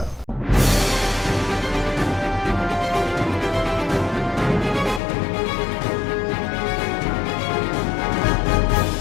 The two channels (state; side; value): drops out; right; at 5.0 s